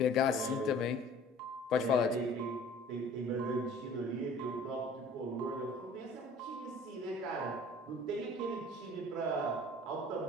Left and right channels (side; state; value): both; normal; correlation 0.48